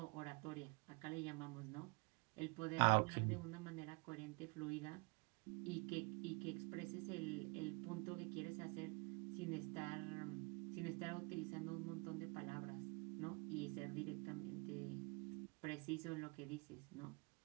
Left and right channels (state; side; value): quieter; left; 29.8 dB